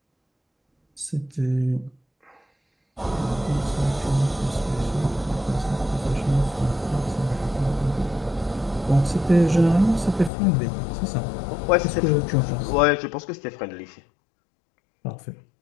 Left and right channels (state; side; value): drops out; right; at 10.3 s